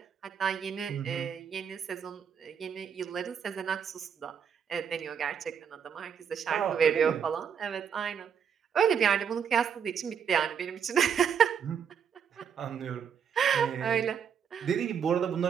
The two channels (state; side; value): quieter; left; 7.5 dB